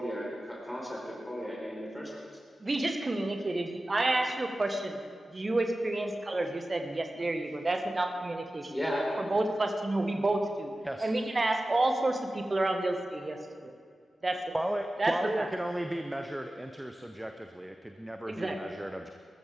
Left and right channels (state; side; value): normal; both; correlation 0.95